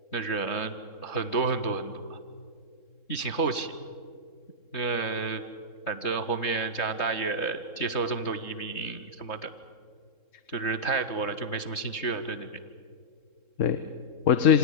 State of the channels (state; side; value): late; right; 3.7 ms